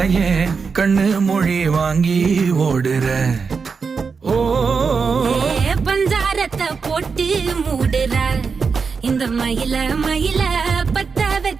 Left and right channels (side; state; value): left; quieter; 5.3 dB